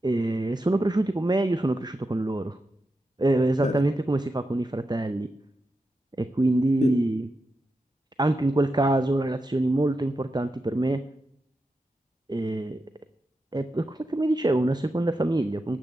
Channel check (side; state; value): both; normal; correlation 0.88